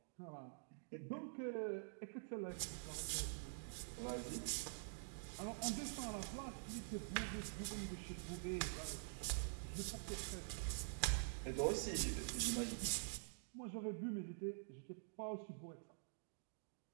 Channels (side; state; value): left; silent; digital silence